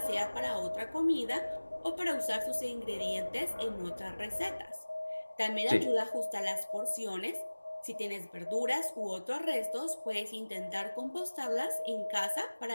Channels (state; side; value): inverted; both; correlation -1.00